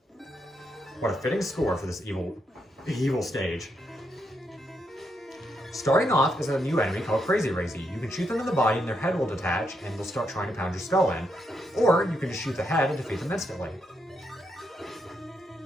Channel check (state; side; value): normal; both; correlation 0.80